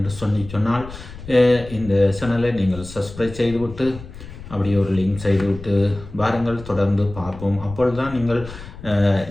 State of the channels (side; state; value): left; noise; rumble, 14 dB below the sound